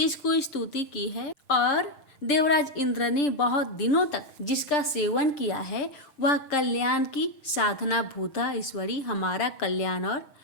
स्तुति की है और देवराज इंद्र ने बहुत दिनों तक जिसका सेवन किया है, वह कल्याण की साधना भूता ईश्वरी हमारा कल्याण और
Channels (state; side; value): late; right; 7.5 ms